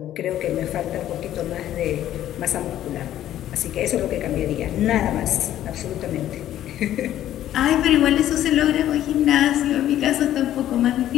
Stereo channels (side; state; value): right; quieter; 12.3 dB